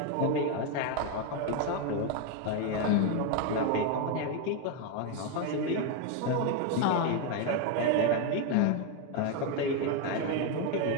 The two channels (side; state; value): both; different; correlation 0.02